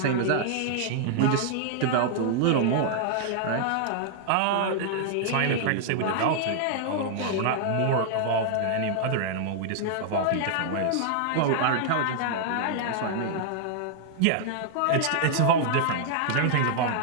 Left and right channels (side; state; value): both; different; correlation -0.01